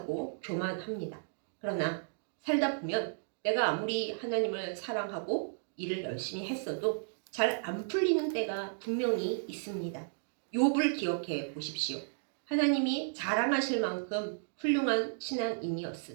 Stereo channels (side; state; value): left; silent; digital silence